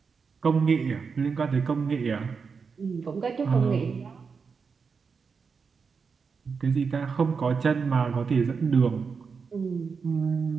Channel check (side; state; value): left; quieter; 5.4 dB